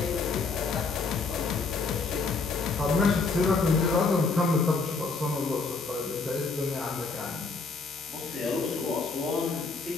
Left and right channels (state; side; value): quieter; right; 4.2 dB